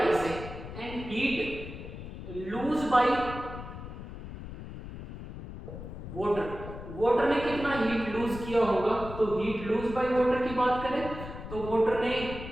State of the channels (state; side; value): noise; left; rumble, 11 dB below the sound